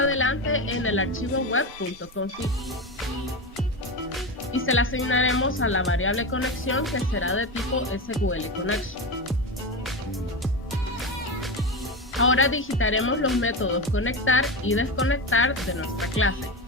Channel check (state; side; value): normal; both; correlation 0.19